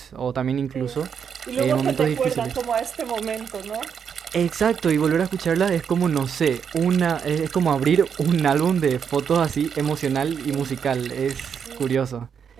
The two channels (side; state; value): left; quieter; 7.2 dB